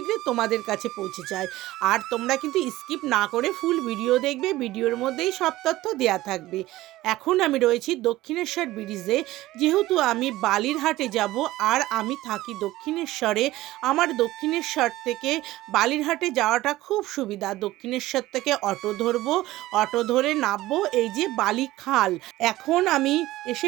তোমাদের কাছে পৌঁছে যায়। আর তোমরা কিন্তু স্কিপ না করে ফুল ভিডিও দেখবে, ভিডিওর মধ্যেই সব তথ্য দেওয়া থাকবে। এখন আমি রয়েছি দক্ষিণেশ্বর ব্রিজে, যেহেতু আমি বালিরহাটে যাব আর আমি থাকি দক্ষিণেশ্বরে। আমার দক্ষিণেশ্বর থেকে বালিরহাটে যাওয়াটা খুব সুবিধা। দক্ষিণেশ্বর থেকে অটো ধরবো, অটো ধরে নামবো এই যে বালিখাল। এখন আমি এসে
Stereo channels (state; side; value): quieter; left; 16.7 dB